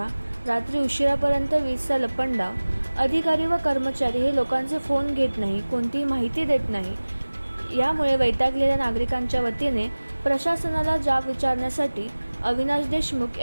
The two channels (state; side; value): inverted; both; correlation -1.00